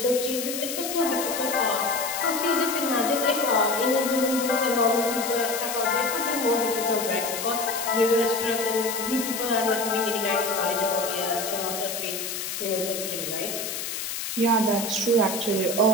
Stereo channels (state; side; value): noise; left; hiss, 5 dB below the sound